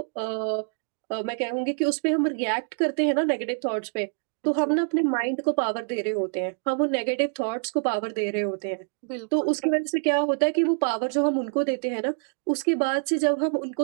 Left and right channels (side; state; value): left; silent; digital silence